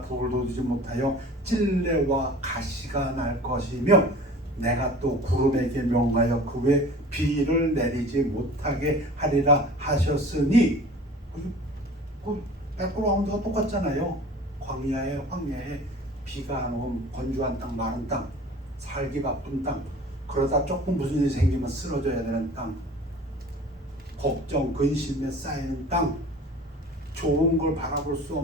돋우지 못하여 찔레와 가시가 날 것이며 내가 또 구름에게 명하여 그 외 비를 내리지 못하게 하리라 하셨으니. 그 백그라운드가 똑같잖아요. 황야에 비가 안 오면 건조한 땅, 마른 땅, 살기 바쁜 땅, 그러다 조금 무슨 일이 생기면 쓰러져야 되는 땅, 걱정, 근심에 쌓이는 땅, 좋은 걸 바라볼 수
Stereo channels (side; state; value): both; normal; correlation 0.43